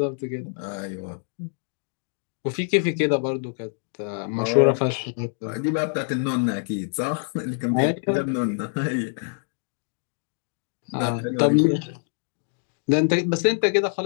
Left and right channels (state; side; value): silent; right; digital silence